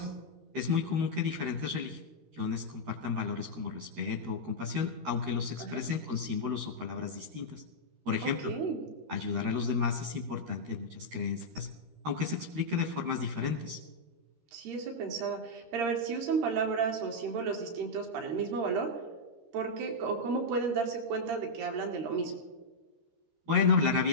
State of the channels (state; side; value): late; left; 13 ms